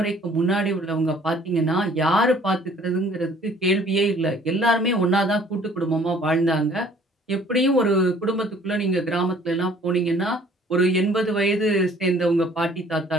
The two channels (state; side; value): normal; both; correlation 0.56